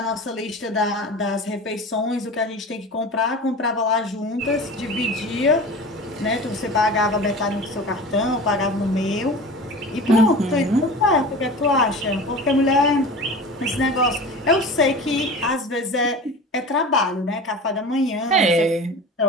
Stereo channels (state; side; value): normal; both; correlation 0.35